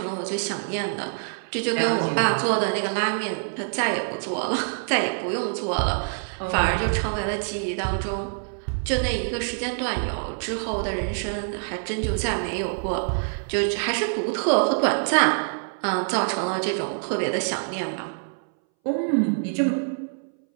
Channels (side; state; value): left; silent; 60 dB below the other